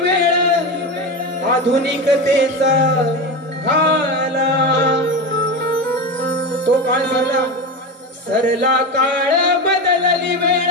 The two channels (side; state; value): both; normal; correlation 0.21